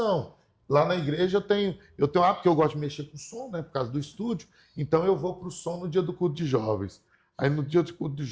Lá na igreja eu tenho porque eu gosto de mexer com som, né, por causa do estúdio, então eu vou para o som no dia do culto de jovens. Aí no dia do culto de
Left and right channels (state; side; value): identical; both; correlation 1.00